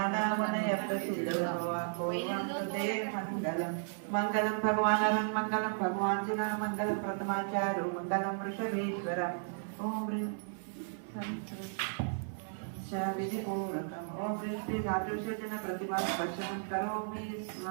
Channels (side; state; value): left; silent; 55 dB below the other